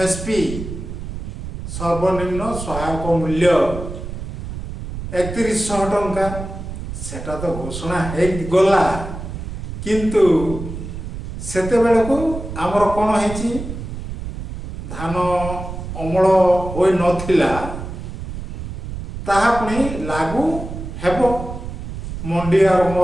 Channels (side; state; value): right; noise; rumble, 8 dB below the sound